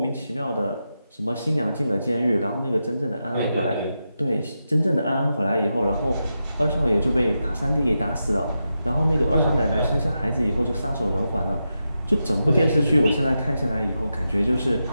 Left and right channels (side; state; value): both; inverted; correlation -0.88